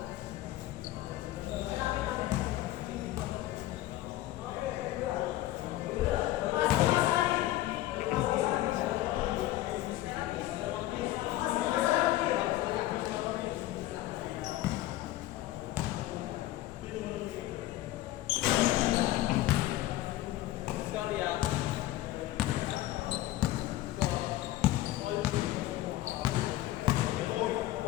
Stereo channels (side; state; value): right; quieter; 15.6 dB